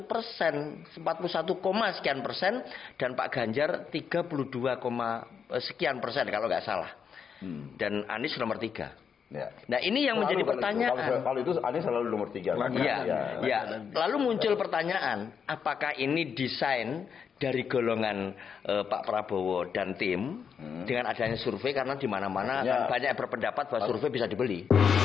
41, sekian persen, dan Pak Ganjar 32, sekian persen kalau nggak salah. Dan Anies nomor 3. Ya. Nah ini yang menjadi pertanyaan. Kalau itu Anies selalu nomor 3. Ya. Lalu muncul pertanyaan, apakah ini desain dari golongan Pak Prabowo dan tim dengan adanya survei, karena di mana-mana kan banyak yang berpendapat bahwa survei bisa dibeli.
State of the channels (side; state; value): right; quieter; 6.9 dB